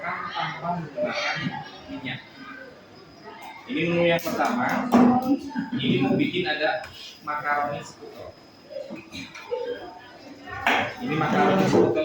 tanpa menggunakan minyak. Ini menu yang pertama, ini mau bikin ada makaroni sekutel. Ini makaroni sekutel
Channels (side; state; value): both; identical; correlation 1.00